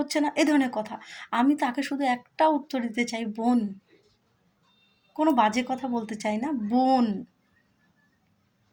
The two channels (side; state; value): both; identical; correlation 1.00